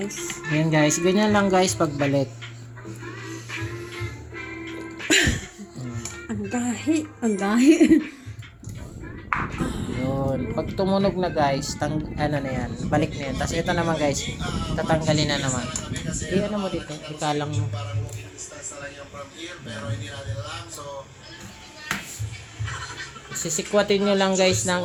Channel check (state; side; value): identical; both; correlation 1.00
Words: Ayan guys, ganyan lang guys pagbalik. Ang gahi. Ang gahi. Yun. Pag tumunog na guys, ano na yan, balik na yan. Tapos ito naman guys, tatanggalin na naman. Ano mo dito, ikalang mo. Sisikwatin nyo lang guys